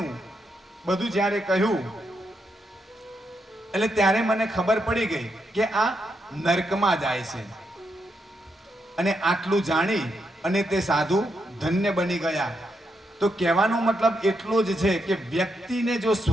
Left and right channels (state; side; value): normal; both; correlation 0.81